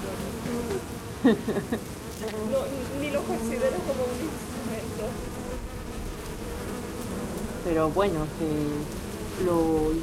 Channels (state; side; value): identical; both; correlation 1.00